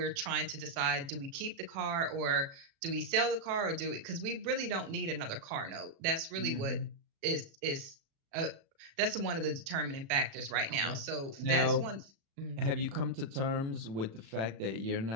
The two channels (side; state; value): left; late; 36 ms